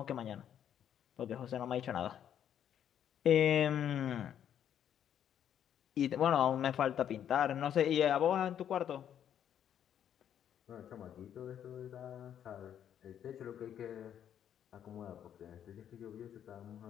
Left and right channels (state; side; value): quieter; right; 9.6 dB